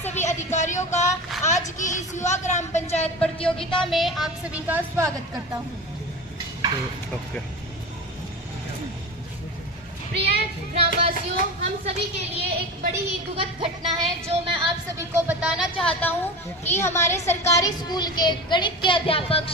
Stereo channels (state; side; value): normal; both; correlation 0.28